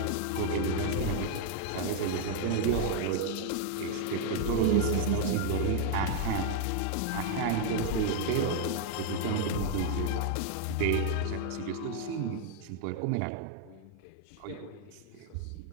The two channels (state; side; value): different; both; correlation 0.00